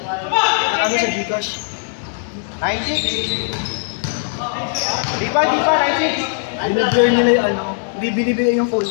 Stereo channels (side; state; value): right; silent; digital silence